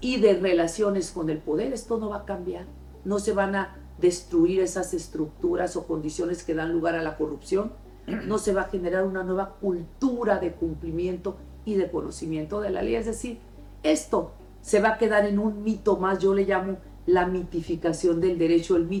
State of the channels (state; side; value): identical; both; correlation 1.00